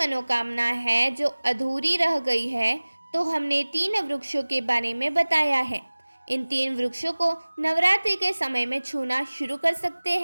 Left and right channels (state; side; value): inverted; both; correlation -1.00